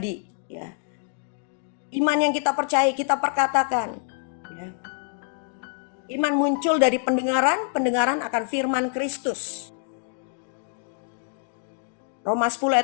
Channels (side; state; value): right; silent; digital silence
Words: ya. Iman yang kita percaya kita perkatakan, ya. Iman muncul dari pendengaran, pendengaran akan firman Kristus. Roma 10